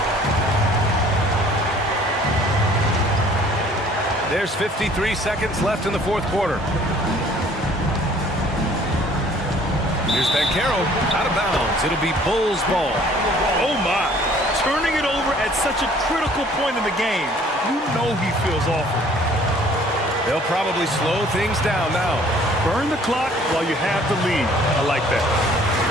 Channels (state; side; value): normal; both; correlation 0.55